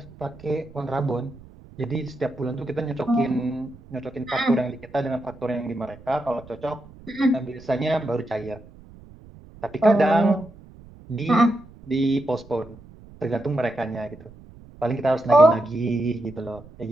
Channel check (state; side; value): noise; right; rumble, 21 dB below the sound